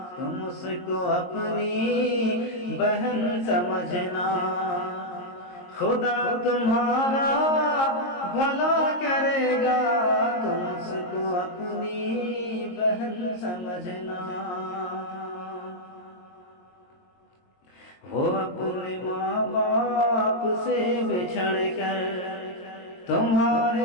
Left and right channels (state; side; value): late; right; 22 ms